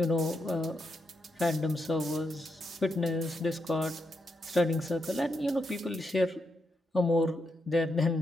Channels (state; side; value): normal; both; correlation 0.82